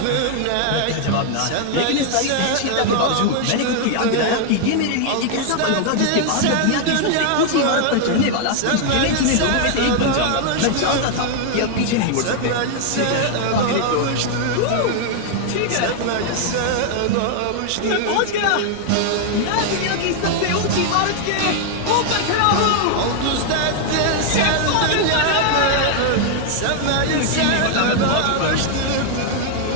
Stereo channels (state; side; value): different; both; correlation 0.00